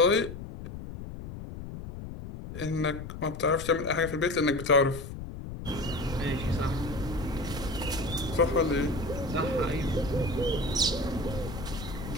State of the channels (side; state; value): left; noise; rumble, 10 dB below the sound